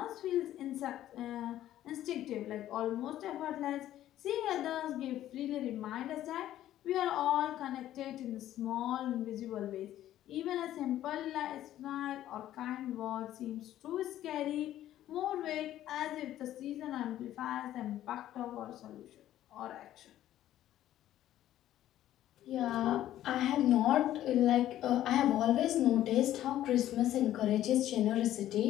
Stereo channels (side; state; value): right; quieter; 12.8 dB